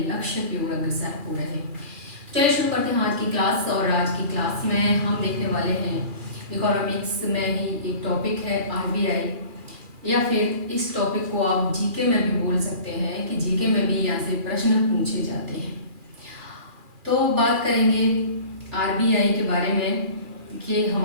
लक्ष्य की ओर अग्रसर हो रहे हैं। चलिए शुरू करते हैं आज की क्लास। और आज की क्लास में हम देखने वाले हैं इकोनॉमिक्स में ही एक टॉपिक है आरबीआई, या फिर इस टॉपिक को आप जीके में भी बोल सकते हैं कि जीके में भी यहाँ से प्रश्न पूछे जाते हैं। तो बात करेंगे आरबीआई के बारे में कि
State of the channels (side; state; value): left; late; 2.4 ms